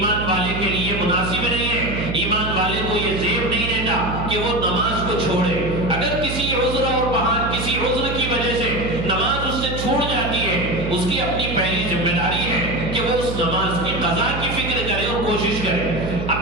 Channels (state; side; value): noise; right; hum, 5 dB below the sound